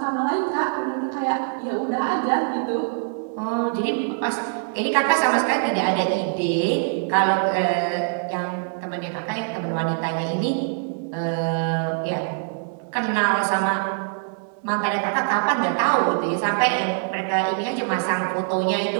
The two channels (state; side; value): silent; left; digital silence